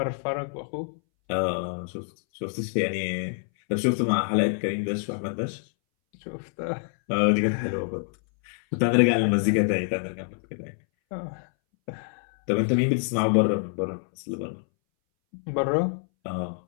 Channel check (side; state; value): right; silent; 61 dB below the other